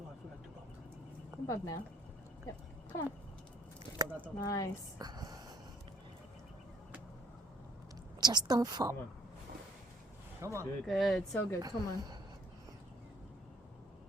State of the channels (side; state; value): both; normal; correlation 0.60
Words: Come up now. Yep. Come on. Nice. Just don't fall. Come on. Good. Good. So good. Come on.